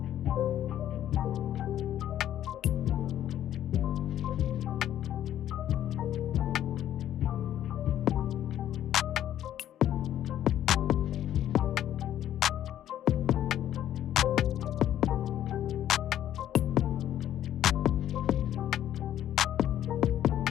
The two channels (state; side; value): quieter; right; 11.4 dB